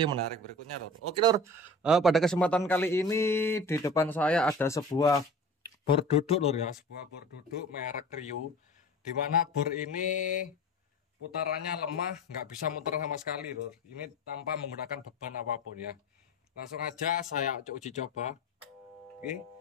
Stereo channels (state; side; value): normal; both; correlation 0.37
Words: menarik berikutnya lur. Oke lur, pada kesempatan kali ini di depan saya ada sebuah bor duduk lur ya, sebuah bor duduk merek Rio, dimana bor ini putarannya lemah, nggak bisa muter sama sekali lur. Ini tanpa menggunakan beban apapun ya. Langsung aja saya uji coba. Oke,